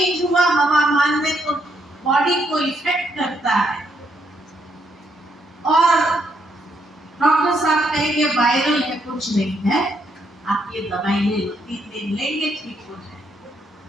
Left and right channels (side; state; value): both; normal; correlation 0.75